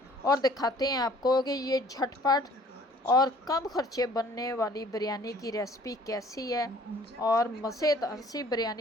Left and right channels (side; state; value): both; normal; correlation 0.54